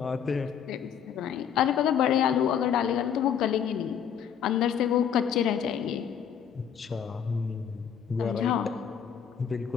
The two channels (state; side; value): quieter; right; 8.3 dB